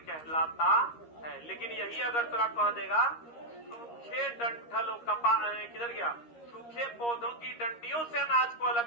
कहलाता है। लेकिन यही अगर तुरा कह देगा सूखे डंठल कपा किधर गया, सूखे पौधों की डंडियों से अनाज को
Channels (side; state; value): right; late; 13 ms